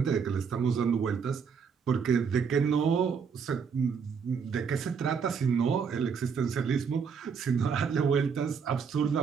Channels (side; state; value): left; quieter; 6.3 dB